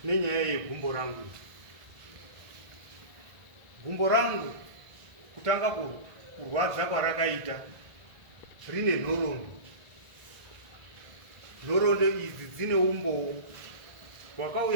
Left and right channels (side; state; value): left; late; 1.6 ms